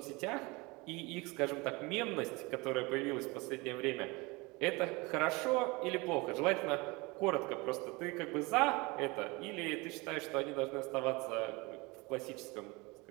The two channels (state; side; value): quieter; left; 25.2 dB